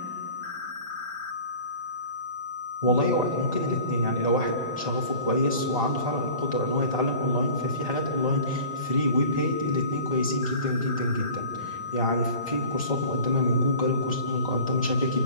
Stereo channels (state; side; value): inverted; both; correlation -0.42